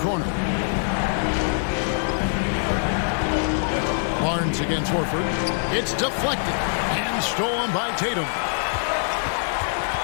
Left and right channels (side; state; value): right; silent; digital silence